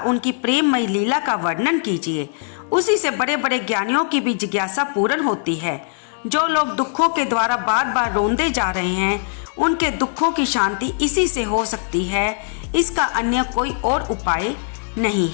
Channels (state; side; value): silent; right; digital silence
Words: प्रेममयी लीला का वर्णन कीजिए। उसी से बड़े बड़े ज्ञानियों की भी जिज्ञासा पूर्ण होती है। जो लोग दुखों के द्वारा बार बार रोंदे जा रहे हैं, उनके दुखों की शांति इसी से हो सकती है। इसका अन्य कोई और उपाय नहीं